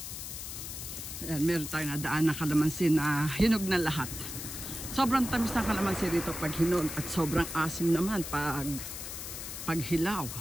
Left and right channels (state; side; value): noise; left; hiss, 8 dB below the sound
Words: Ayan, meron tayong nadaan ng kalamansi na hinog na lahat. Sobrang tamis ng kalamansi dito pag hinog at sobrang asim naman pag hilaw.